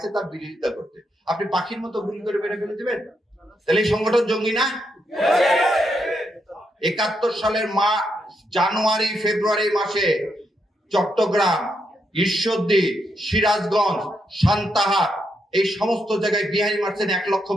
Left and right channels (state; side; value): normal; both; correlation 0.80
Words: তার বিরোধিতা করতে, আপনি পাখির মতো গুলি করে মেরে ফেলে দিবেন? তাহলে এই সংগঠন জঙ্গি না? 71 সালের জানুয়ারি ফেব্রুয়ারি মাসে চট্টগ্রাম, ঈশ্বরদী, সিরাজগঞ্জ, সান্তাহার এই সমস্ত জায়গায় বিহারি মারছেন